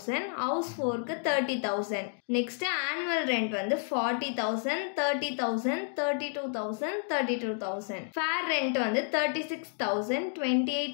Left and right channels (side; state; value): right; silent; 57 dB below the other